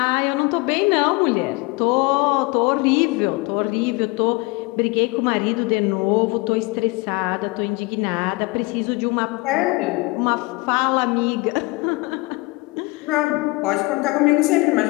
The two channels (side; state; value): right; quieter; 25.4 dB